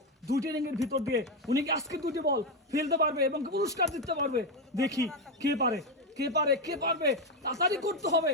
দুইটা রিংয়ের ভিতর দিয়ে উনি কি আজকে দুটি বল ফেলতে পারবে এবং পুরস্কার জিততে পারবে? দেখি কে পারে, কে পারে, কে পারবে। তাড়াতাড়ি করতে হবে,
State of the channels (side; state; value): both; normal; correlation 0.08